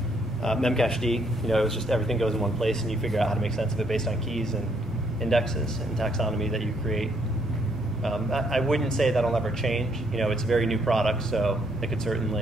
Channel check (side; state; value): both; normal; correlation 0.70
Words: memcached. It was just everything goes in one place and you figure out how to make sense of it based on keys and indexes and taxonomy that you create. I wouldn't say that'll never change. It's a very new product, so it could